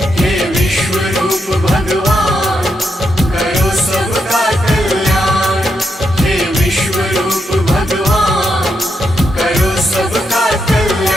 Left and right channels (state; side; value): normal; both; correlation 0.82